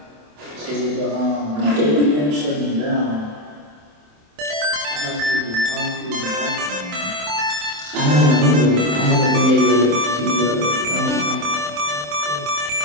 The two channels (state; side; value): late; left; 27 ms